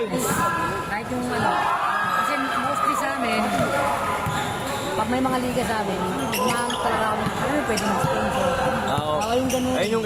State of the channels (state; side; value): identical; both; correlation 1.00